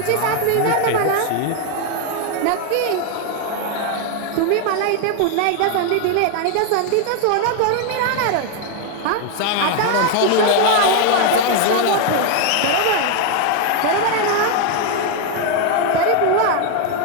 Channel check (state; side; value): different; both; correlation 0.01